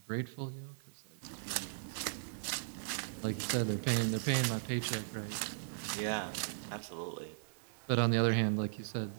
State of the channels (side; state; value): left; silent; digital silence